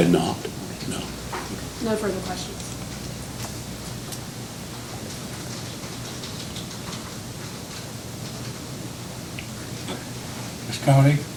not, no. No further questions. Ms. Coney,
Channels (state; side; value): identical; both; correlation 1.00